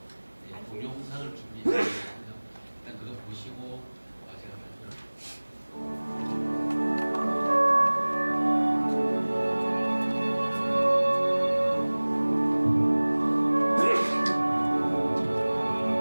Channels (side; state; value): both; inverted; correlation -1.00